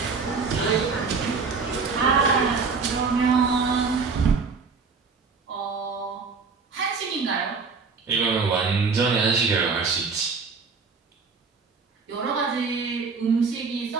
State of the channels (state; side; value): quieter; left; 4.9 dB